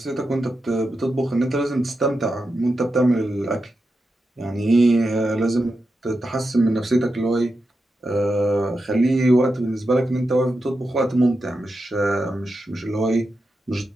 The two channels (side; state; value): both; normal; correlation 0.88